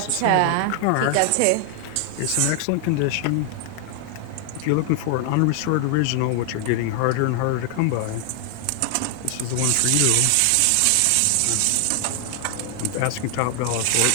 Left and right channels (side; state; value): both; different; correlation 0.00